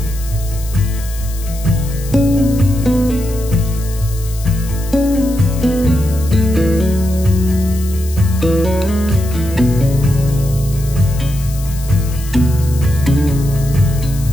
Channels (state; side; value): noise; left; hiss, 15 dB below the sound